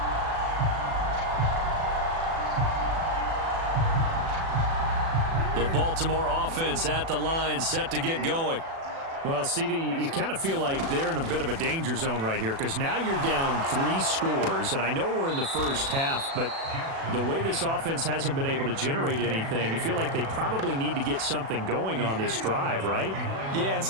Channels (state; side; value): late; left; 36 ms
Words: The Baltimore offense at the line, set to get going. Well, CD, you kind of feel like they're in a bit of a danger zone right here because now you're down 3 scores, and I know we're in the first half, but the way this offense hasn't been able to generate anything, you feel like they probably need to get something going on this drive, right? Yeah, and